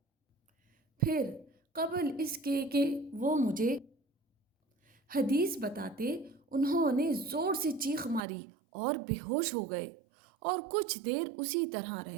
پھر قبل اس کے کہ وہ مجھے حدیث بتاتے انہوں نے زور سے چیخ ماری اور بے ہوش ہو گئے اور کچھ دیر اسی طرح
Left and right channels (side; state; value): left; drops out; at 8.2 s